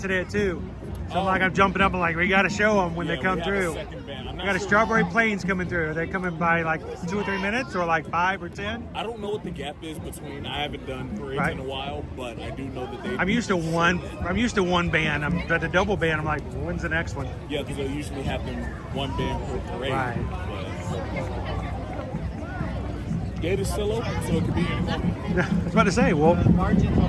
at 2. So I'm jumping up and like, we got to show them when they come through. We got a Strawberry Plains coming through. Are they coming by like 2 or 3 minutes, or like 5 or 10? I don't know what the gap is between. I haven't done parades in a while, but I do know that they. I'm used to one band. But the double band, I'm like, when's the next one? Yeah, because they usually have them one band per parade. Right. Gate is still open, so it could be any moment. I was about to say, we'll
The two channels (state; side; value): identical; both; correlation 1.00